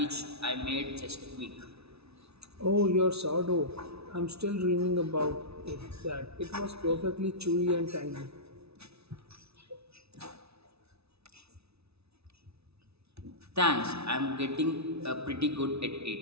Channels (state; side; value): late; left; 0.79 ms